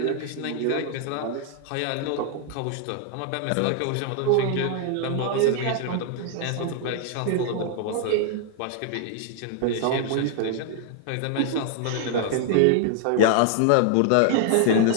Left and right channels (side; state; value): both; different; correlation 0.00